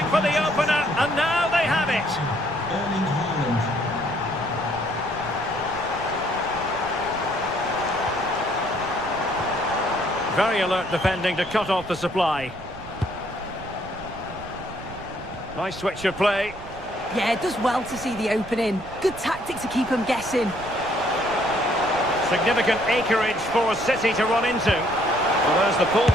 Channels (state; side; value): noise; right; rumble, 16 dB below the sound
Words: for the opener, and now they have it. Erling Haaland. Very alert defending to cut off the supply. Nice switch of play. Yeah, it does well to see the opening. Good tactic to keep him guessing. Significant acreage for City to run into. Well, there's the